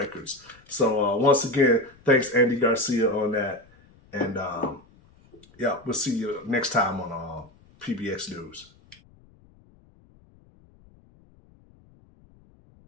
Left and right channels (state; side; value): noise; left; rumble, 28 dB below the sound